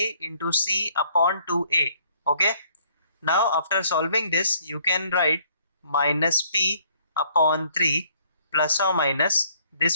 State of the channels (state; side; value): inverted; both; correlation -0.64